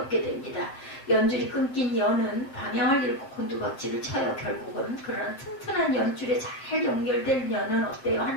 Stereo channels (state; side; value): late; right; 7.5 ms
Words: 됩니다. 연줄이 끊긴 연은 방향을 잃고 곤두박질을 쳐요. 결국은. 그러나 튼튼한 연줄에 잘 연결된 연은 어때요?